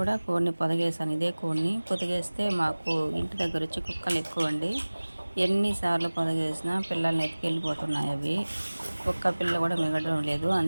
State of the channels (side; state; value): both; inverted; correlation -1.00